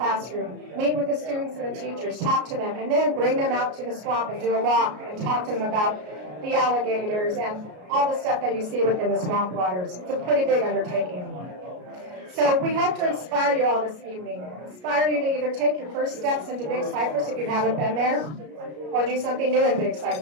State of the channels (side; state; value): left; late; 33 ms